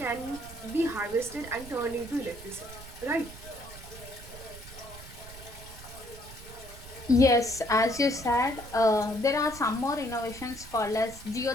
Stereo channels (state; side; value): noise; right; rumble, 15 dB below the sound